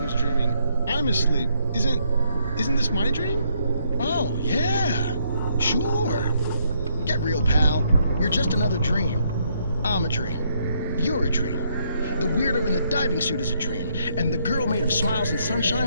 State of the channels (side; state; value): both; inverted; correlation -0.72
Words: dreaming. I'm asleep. Isn't this my dream? Oh, yeah. Sure. Get real, pal. You're just another dream. I'm a dream. You're a dream. The weirdo in the diving suit is a dream, and the girl made of smiles and